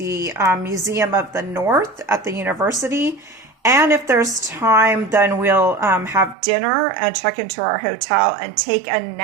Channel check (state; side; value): drops out; left; at 6.4 s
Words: Museum of the North at the university. And if there's time, then we'll have dinner and check into our hotel and take a